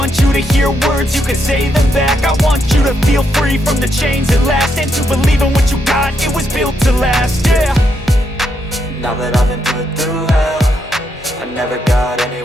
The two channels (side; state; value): both; normal; correlation 0.79